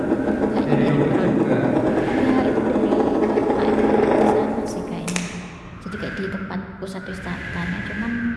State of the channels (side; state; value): both; identical; correlation 1.00